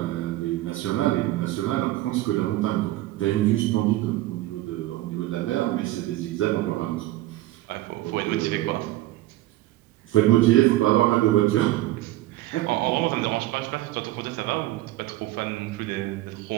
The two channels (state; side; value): quieter; left; 16.3 dB